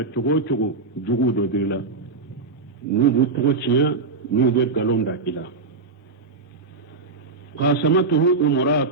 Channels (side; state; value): left; quieter; 4.0 dB